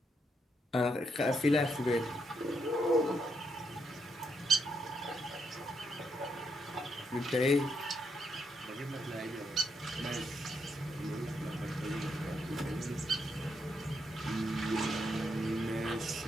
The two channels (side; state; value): both; normal; correlation 0.79